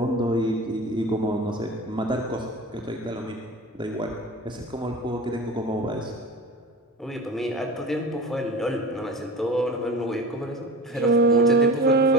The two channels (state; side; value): normal; both; correlation 0.34